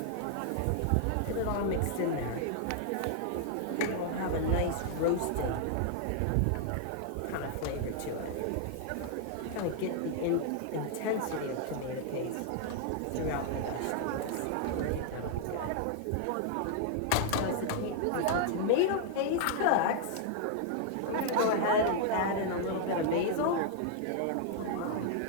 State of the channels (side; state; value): both; different; correlation 0.00